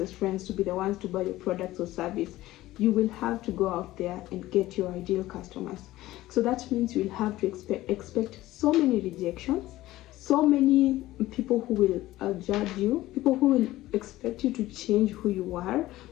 friends to be the ones to buy your products or service. You will have to go out there and get your ideal customers. So that means you will have to expect so many rejections, so many people who will judge you, people who will expect you to change who you are,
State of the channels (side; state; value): right; quieter; 16.4 dB